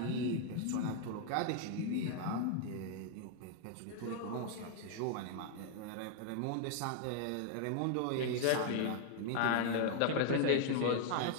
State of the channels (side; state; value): both; different; correlation -0.01